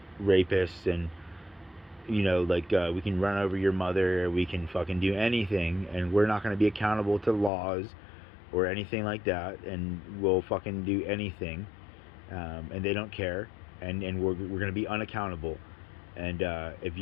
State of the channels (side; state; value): right; drops out; at 7.5 s